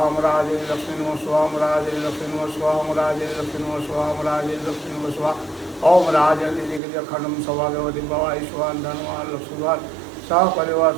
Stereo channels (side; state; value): left; drops out; at 6.8 s